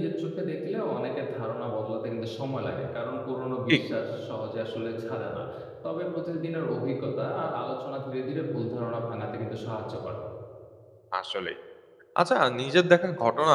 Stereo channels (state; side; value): identical; both; correlation 1.00